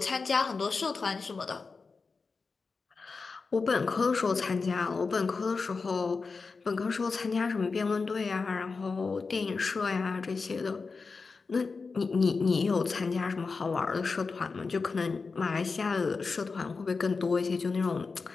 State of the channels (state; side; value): quieter; right; 4.5 dB